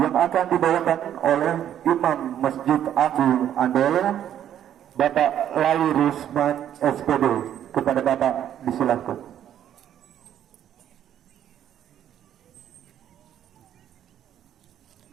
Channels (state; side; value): quieter; left; 10.5 dB